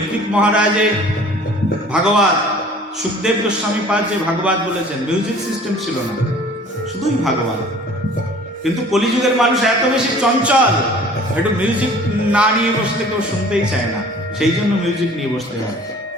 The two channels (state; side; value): normal; both; correlation 0.48